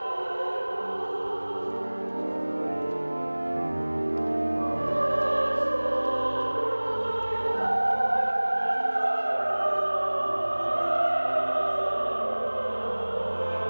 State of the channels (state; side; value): inverted; both; correlation -1.00